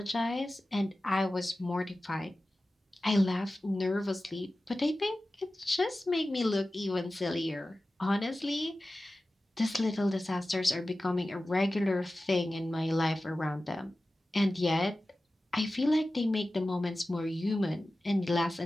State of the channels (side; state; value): both; normal; correlation 0.95